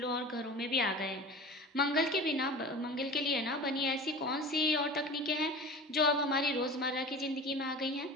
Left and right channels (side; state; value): both; normal; correlation 0.35